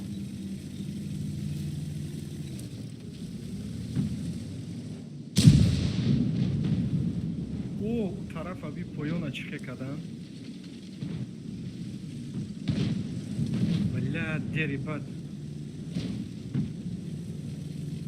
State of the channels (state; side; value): identical; both; correlation 1.00